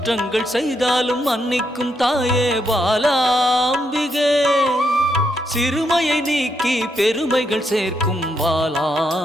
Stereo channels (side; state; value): both; normal; correlation 0.79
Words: செய்தாலும் மன்னிக்கும் தாயே பாலாம்பிகே. சிறுமையை நீக்கி பெருமைகள் சேர்க்கும்